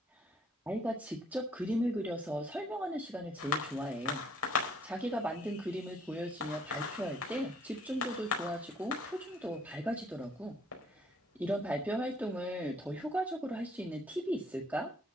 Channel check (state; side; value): normal; both; correlation 0.62